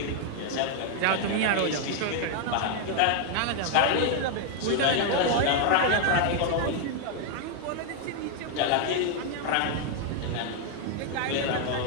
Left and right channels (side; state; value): both; different; correlation 0.00